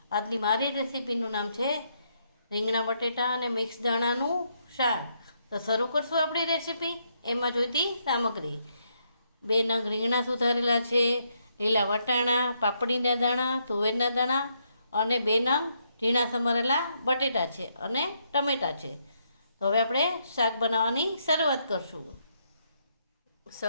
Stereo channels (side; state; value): both; inverted; correlation -0.76